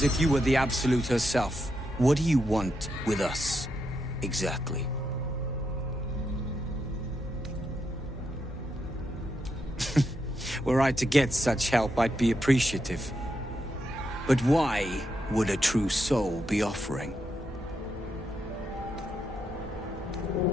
if you were the Absolute herself. What do you want with us, exactly? Were I to get such help, I'd be appreciative. But why would a true soul be offering?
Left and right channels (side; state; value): both; normal; correlation 0.82